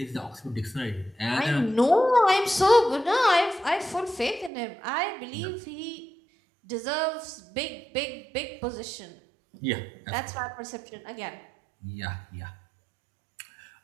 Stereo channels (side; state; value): left; drops out; at 4.5 s